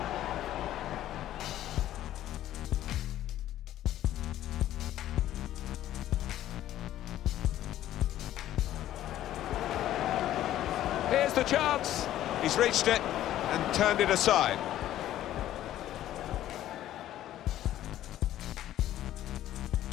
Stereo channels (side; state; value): right; quieter; 12.9 dB